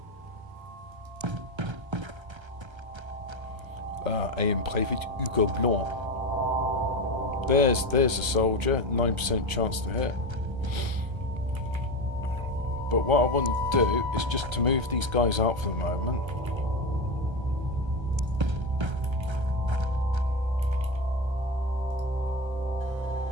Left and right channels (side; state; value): left; late; 1.3 ms